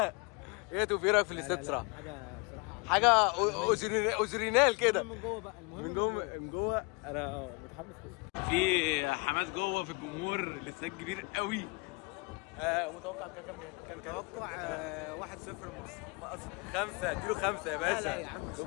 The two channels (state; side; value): quieter; right; 29.7 dB